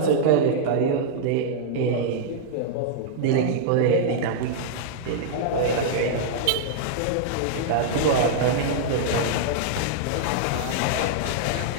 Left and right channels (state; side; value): different; both; correlation -0.01